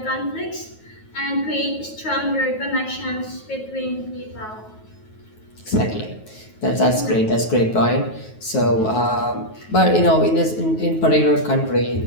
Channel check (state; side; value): late; right; 9.3 ms